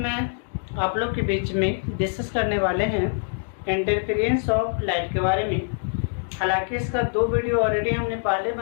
आप लोग के बीच में डिस्कस करने वाले हैं इंटरफेरेंस ऑफ लाइट के बारे में। हालांकि इसका 2 वीडियो ऑलरेडी हमने पहले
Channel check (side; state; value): right; silent; digital silence